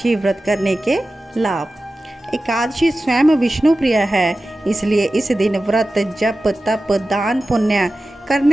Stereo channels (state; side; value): normal; both; correlation 0.94